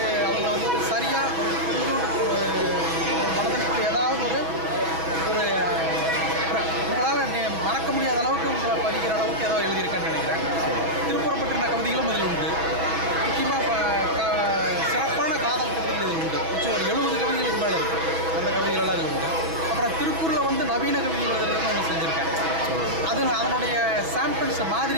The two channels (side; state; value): left; late; 6.1 ms